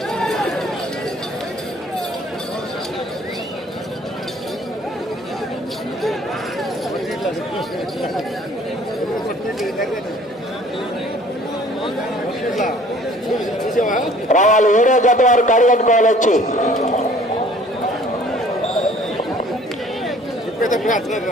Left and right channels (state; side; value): normal; both; correlation 0.54